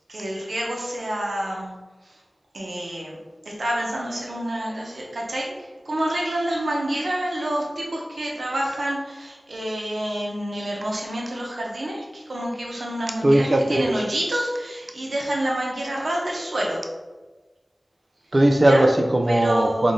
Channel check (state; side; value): normal; both; correlation 0.97